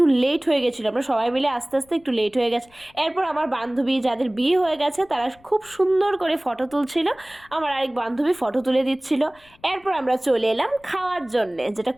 লেট হয়ে গেছিলো, আমরা সবাই মিলে আস্তে আস্তে একটু লেট হয়ে গেছে। এরপর আমার বান্ধবী যাদের বিয়ে হয়ে গেছে তারা খুব সুন্দর করে ফটো তুলছিল, আমার আরেক বান্ধবী ফটো তুলে দিচ্ছিল। এরপর আমরা চলে এলাম খাওয়ার জন্যে, যেটা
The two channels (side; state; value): left; noise; rumble, 29 dB below the sound